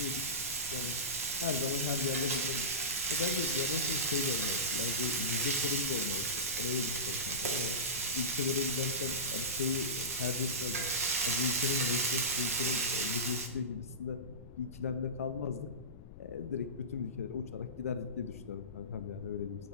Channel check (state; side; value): noise; left; rumble, 16 dB below the sound